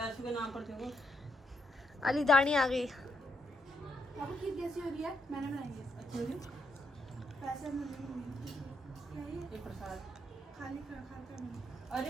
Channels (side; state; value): both; normal; correlation 0.78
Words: के नाम पर देखो अली दानी आ गई। आपको खीर कैसी हो रही है? मैंने बनाई है। अच्छी हो रही पैसे क्या है? ये प्रसाद खाली खाता नहीं।